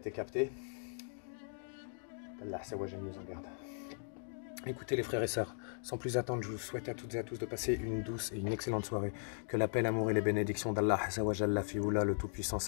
capté. Là, c'est ouais, j'aime nous en garde. Écoutez les frères et sœurs, sans plus attendre, je vous souhaite à toutes et à tous de passer une douce et une excellente soirée. Que la paix, l'amour et les bénédictions d'Allah, la Fioula, le Tout-Puissant,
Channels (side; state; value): right; silent; digital silence